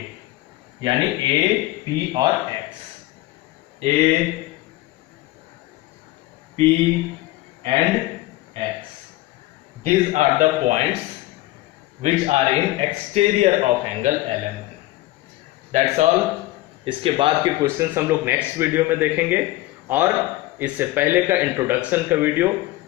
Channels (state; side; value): quieter; right; 17.6 dB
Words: यानी A, P और X, A, P and X। These are the points which are in exterior of angle LMN. That's all. इसके बाद के क्वेश्चंस हम लोग नेक्स्ट वीडियो में देखेंगे और इससे पहले का इंट्रोडक्शन का वीडियो